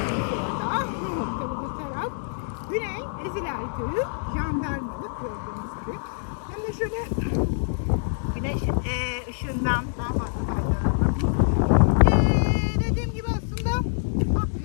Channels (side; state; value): right; silent; digital silence